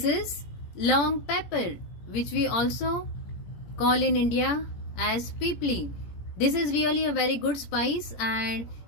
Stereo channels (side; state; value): right; late; 17 ms